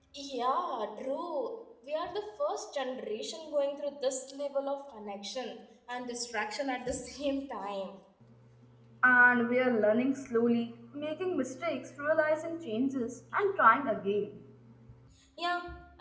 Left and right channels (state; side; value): identical; both; correlation 1.00